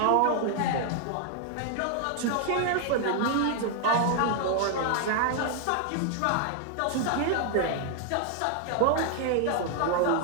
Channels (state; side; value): different; both; correlation 0.00